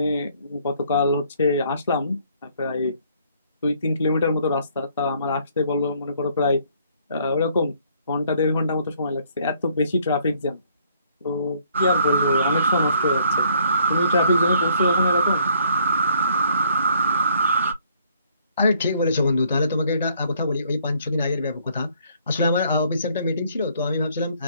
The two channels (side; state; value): both; inverted; correlation -0.64